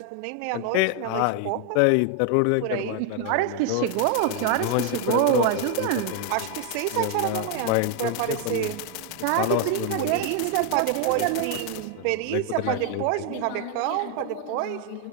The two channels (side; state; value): both; different; correlation 0.01